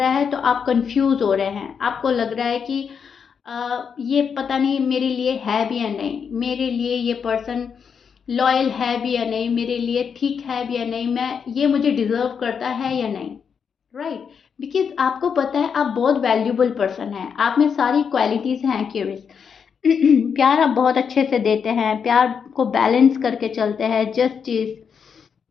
है तो आप कंफ्यूज हो रहे हैं, आपको लग रहा है कि ये पता नहीं मेरे लिए है भी या नहीं, मेरे लिए ये पर्सन लॉयल है भी या नहीं, मेरे लिए ठीक है भी या नहीं, मैं ये मुझे डिजर्व करता है या नहीं, राइट। बिकॉज आपको पता है आप बहुत वैल्यूबल पर्सन हैं, आप में सारी क्वालिटीज़ हैं। क्यूरियस, प्यार आप बहुत अच्छे से देते हैं, प्यार को बैलेंस करके चलते हैं, जस्टिस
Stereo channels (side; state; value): right; quieter; 6.7 dB